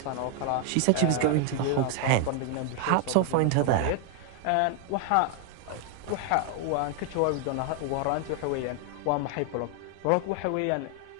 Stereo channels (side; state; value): both; different; correlation 0.00